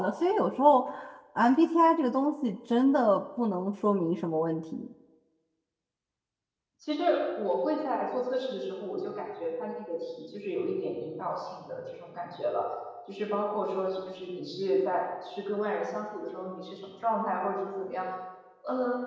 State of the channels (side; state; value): both; identical; correlation 1.00